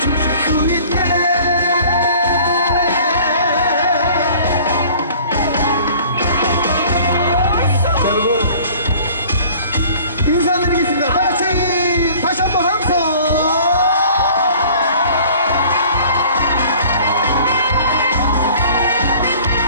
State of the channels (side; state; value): both; inverted; correlation -0.49